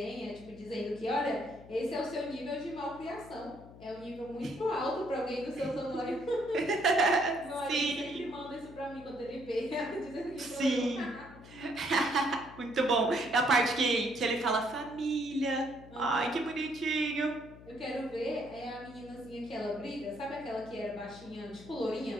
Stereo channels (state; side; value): noise; left; hum, 18 dB below the sound